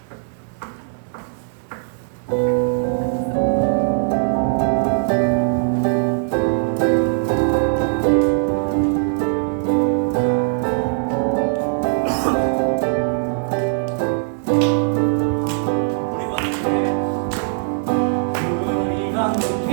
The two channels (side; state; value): left; silent; digital silence